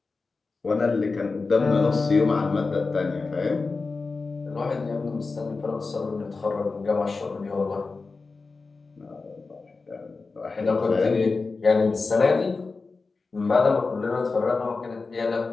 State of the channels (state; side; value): quieter; right; 4.1 dB